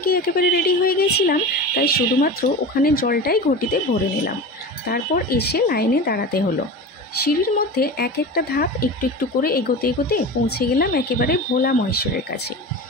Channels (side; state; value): both; normal; correlation 0.30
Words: একেবারে রেডি হয়ে গেছিলাম, তাই শুধুমাত্র ওখানে জলটাই ঘটিতে ভরে নিলাম। তারপর এসে লাইনে দাঁড়াতে হলো। সিঁড়ির মধ্যে এক একটা ধাপ একটু একটু করে এগোতে এগোতে পৌঁছে গেলাম একেবারে ভোলা মহেশ্বরের কাছে।